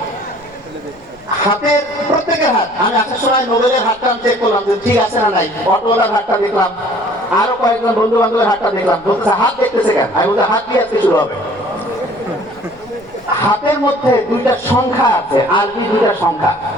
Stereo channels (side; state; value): right; noise; rumble, 27 dB below the sound